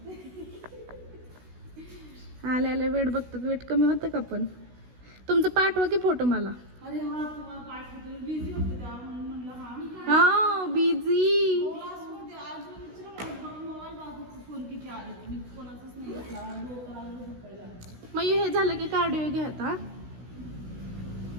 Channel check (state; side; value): late; left; 16 ms